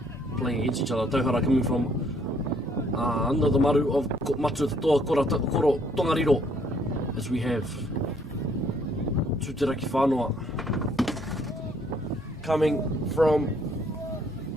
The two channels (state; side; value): normal; both; correlation 0.65